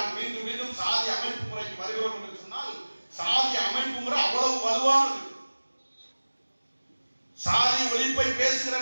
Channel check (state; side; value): inverted; both; correlation -1.00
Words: மீண்டும் மீண்டும் சாதி அமைப்பு முறைக்கு வருகிறோம் என்று சொன்னால், சாதி அமைப்பு முறை அவ்வளவு வலுவானது. சாதி ஒழிப்பை பேசுகிற